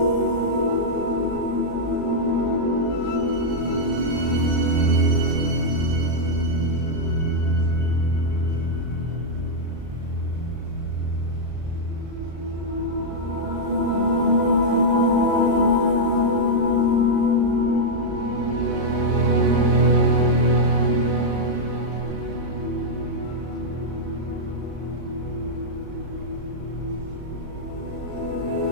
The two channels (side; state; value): left; late; 35 ms